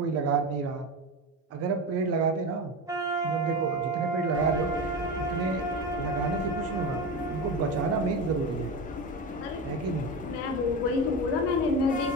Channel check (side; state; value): both; normal; correlation 0.22